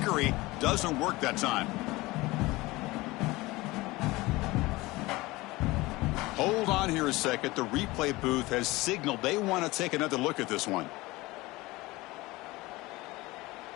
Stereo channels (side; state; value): right; quieter; 20.7 dB